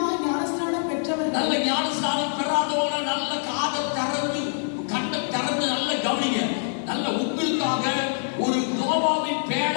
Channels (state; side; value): silent; right; digital silence